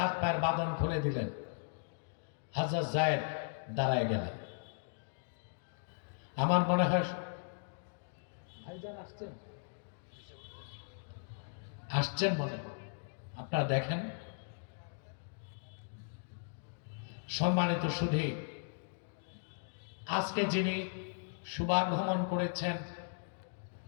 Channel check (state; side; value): silent; right; digital silence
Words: পায়ের বাঁধন খুলে দিলেন। হযরত যায়েদ দাঁড়ায় গেলেন। আমার মনে হয় ভাইজান আসছেন মনে হয়, আপনারা দেখেন। সম্মানিত সুধী, আজকে যিনি শুভাগমন করেছেন